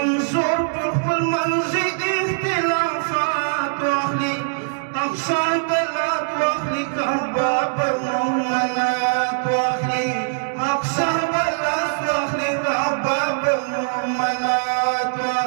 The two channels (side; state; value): left; silent; 65 dB below the other